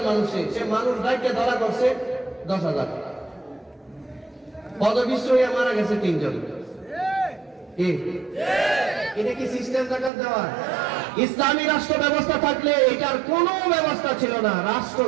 মানুষে, সে মানুষ ডাইকে ধরা করছে 10,000। পদবিষ্ট হয়ে মারা গেছে 3 জন। এটা কি সিস্টেম যাকাত দেওয়া? ইসলামী রাষ্ট্র ব্যবস্থা থাকলে এটার কোনো ব্যবস্থা ছিল না। রাষ্ট্র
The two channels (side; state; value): left; drops out; at 10.1 s